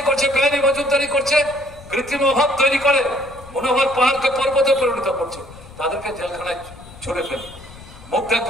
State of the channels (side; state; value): left; noise; rumble, 19 dB below the sound